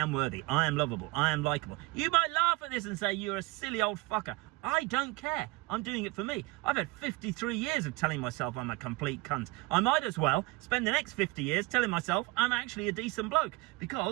worthy, I am lovable, I am likable. You might laugh at this and say you're a silly old fucker. I don't care. I'm doing it for me. I've had 53 years of telling myself I'm a complete cunt. I might as well spend the next 50 years telling myself I'm actually a decent bloke,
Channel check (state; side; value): quieter; left; 22.4 dB